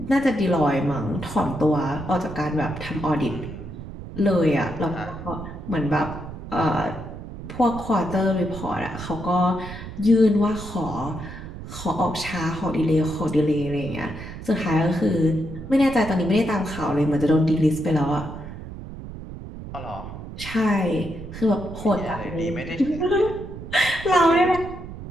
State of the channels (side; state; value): right; noise; rumble, 11 dB below the sound